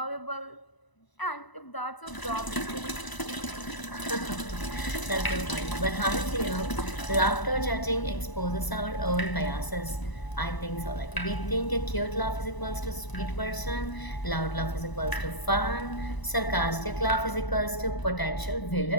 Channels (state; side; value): late; right; 1.0 ms